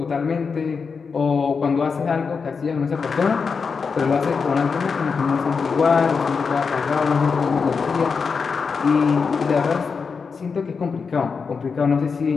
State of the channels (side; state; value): right; quieter; 5.3 dB